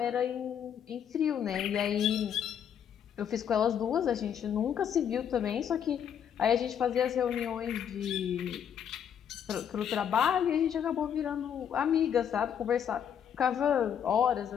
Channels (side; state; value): right; quieter; 8.6 dB